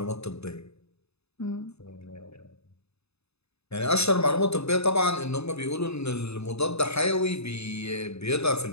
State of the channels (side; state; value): right; late; 0.79 ms